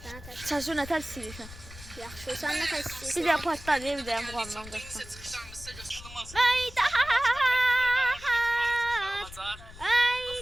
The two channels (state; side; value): noise; left; rumble, 16 dB below the sound